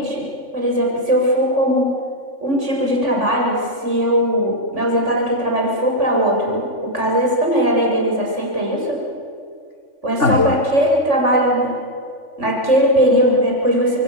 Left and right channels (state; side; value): late; left; 3.5 ms